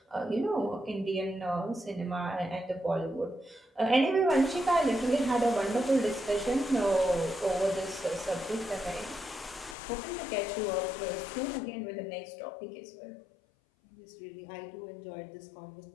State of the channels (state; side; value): drops out; right; at 9.8 s